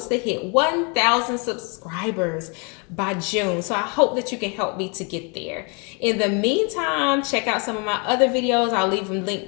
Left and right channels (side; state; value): right; quieter; 34.2 dB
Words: to hit 1,000 subscribers by June. So I hope that you can help me to get there. In the meantime, check out some of my other videos. I'll leave them